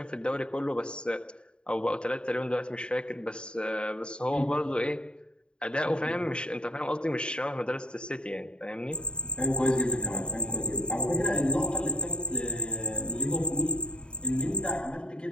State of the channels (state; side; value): late; right; 0.051 ms